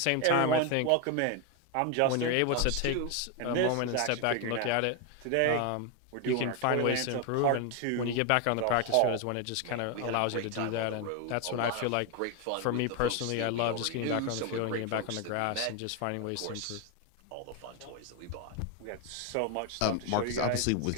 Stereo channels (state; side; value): different; both; correlation 0.01